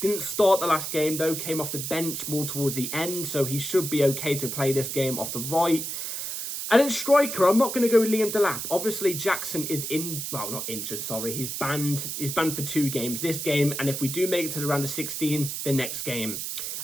Didn't start the last game though. Came off the bench more towards the end. So he should be okay to play this game off the right. And then striker, I'm not going to go with Liam Delap. Obviously, Jackson is not injured, sorry. He's banned. He's banned for 2 games. This game, and if we do make it to the round of 16, the next game.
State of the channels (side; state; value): right; noise; hiss, 4 dB below the sound